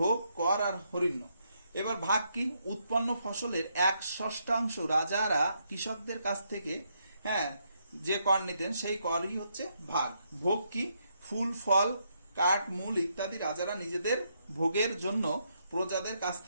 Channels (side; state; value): both; inverted; correlation -0.77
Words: কর আর হরিণ্য। এবার ভাগ কি? উৎপন্ন ফসলের 1/6 রাজারা কৃষকদের কাছ থেকে যে কর নিতেন সেই করই হচ্ছে ভাগ। ভোগ কি? ফুল, ফল, কাঠ, মূল ইত্যাদি রাজারা নিজেদের ভোগের জন্য প্রজাদের কাছ